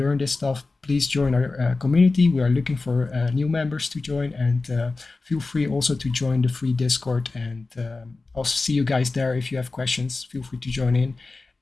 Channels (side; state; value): right; quieter; 3.6 dB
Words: this stuff, please join our community. We are looking for new members to join, and feel free also to join the free Discord. And I'll see you guys there. If you have questions, feel free to join in.